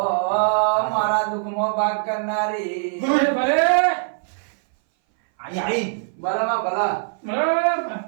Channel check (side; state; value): left; silent; 60 dB below the other